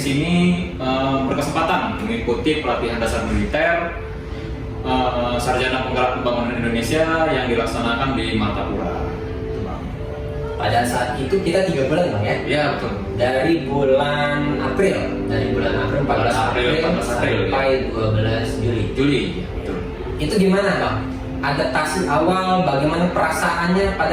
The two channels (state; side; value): identical; both; correlation 1.00